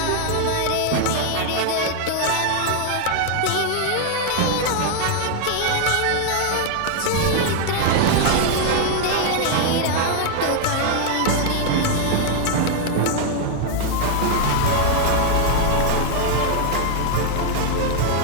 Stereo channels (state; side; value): different; both; correlation 0.00